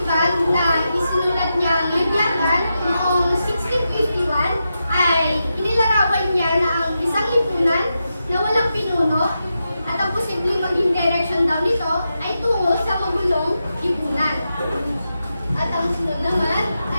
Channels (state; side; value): inverted; both; correlation -0.88